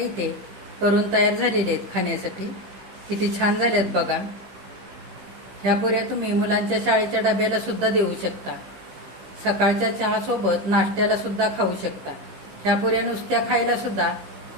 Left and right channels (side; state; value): left; late; 15 ms